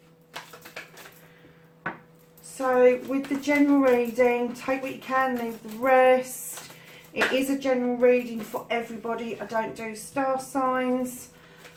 So with the general reading, take what you can, leave the rest. It is a general reading for everybody. I don't do star signs.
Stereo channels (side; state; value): both; identical; correlation 1.00